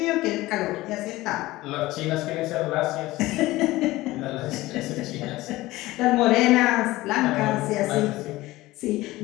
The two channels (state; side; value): quieter; right; 18.3 dB